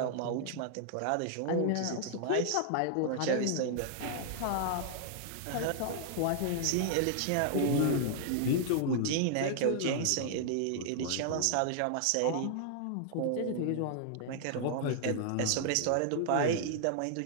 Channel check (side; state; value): both; different; correlation -0.01